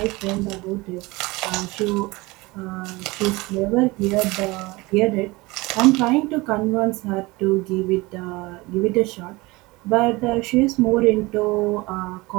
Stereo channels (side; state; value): left; quieter; 22.5 dB